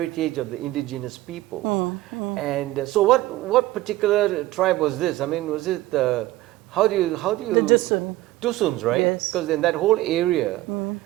of the indigenous people. And so, what particular tribe was this? I mean, was it how do you The Dusun. Dusuns, right? Yes. Because in that whole area,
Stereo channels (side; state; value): left; quieter; 17.0 dB